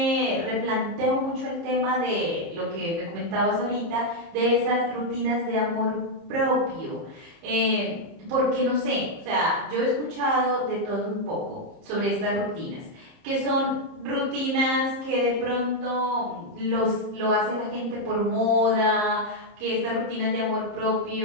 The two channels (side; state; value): left; late; 30 ms